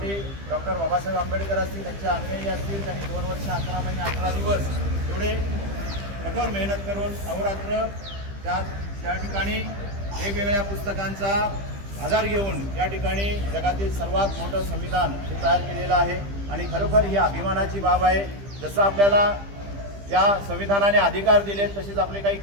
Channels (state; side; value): late; left; 15 ms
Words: डॉक्टर बाबासाहेब आंबेडकर असतील, त्यांच्या अंगणी असतील, त्यांनी 2 वर्ष 11 महिने 11 दिवस एवढे कठोर मेहनत करून अहोरात्र त्या ठिकाणी वेगवेगळ्या पुस्तकांचा आधार घेऊन या ठिकाणी जगातील सर्वात मोठं संविधान हे तयार केलेलं आहे आणि खरोखर ही अभिमानाची बाब आहे. जसं आपल्याला या संविधानाने अधिकार दिलेत तसेच आपले काही